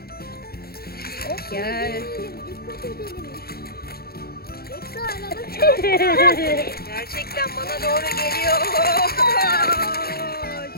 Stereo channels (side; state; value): right; late; 0.45 ms